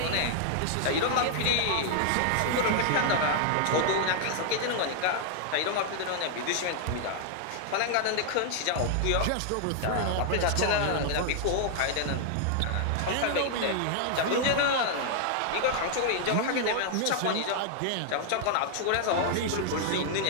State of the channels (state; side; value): different; both; correlation 0.00